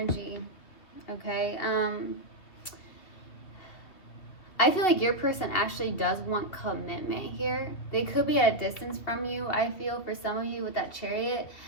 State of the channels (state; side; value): late; right; 2.7 ms